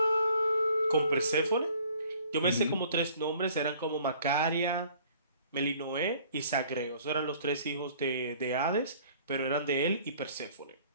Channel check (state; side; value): inverted; both; correlation -0.55